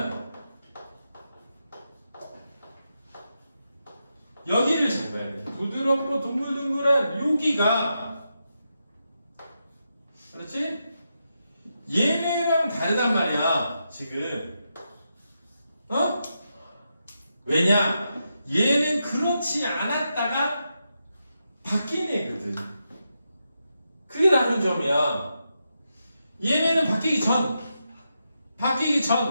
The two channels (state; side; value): inverted; both; correlation -0.85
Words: 여기를 잘 봐야 돼. 부드럽고 동글동글한 여기가, 그렇지? 얘네랑 얘랑 다르단 말이야 지금. 어? 왜냐? 얘는 그렇지 않았다가 바뀐 애거든. 그게 다른 점이야. 얘네는 바뀌기